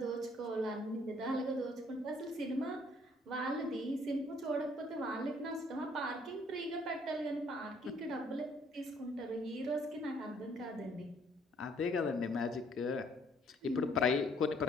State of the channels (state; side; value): normal; both; correlation 0.63